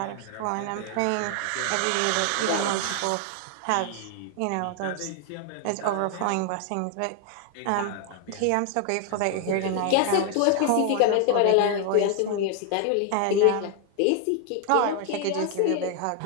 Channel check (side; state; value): both; different; correlation 0.00